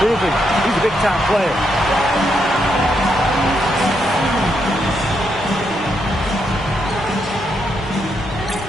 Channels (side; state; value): both; normal; correlation 0.79